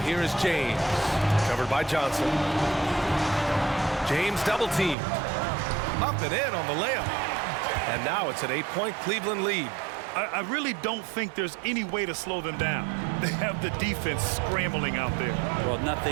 here is James. Covered by Johnson. James double teamed. Up and in on the layup. And now it's an 8-point Cleveland lead. I really don't think there's any way to slow them down. They have the defense scrambling out there. Well,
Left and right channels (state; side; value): drops out; left; at 5.0 s